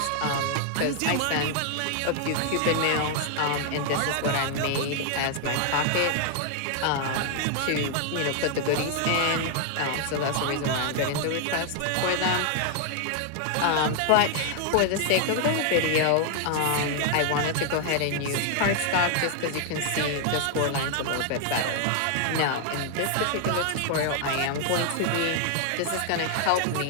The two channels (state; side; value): different; both; correlation 0.00